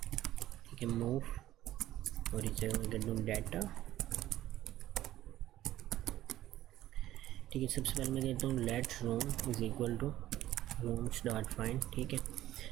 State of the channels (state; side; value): quieter; left; 14.0 dB